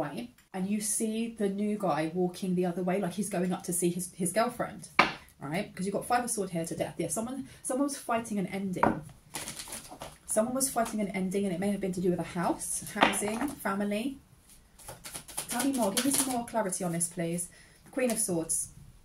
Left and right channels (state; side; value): identical; both; correlation 1.00